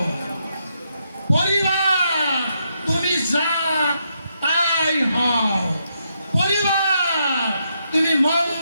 পরিবার তুমি যা তাই হও। পরিবার তুমি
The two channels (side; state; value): both; inverted; correlation -0.79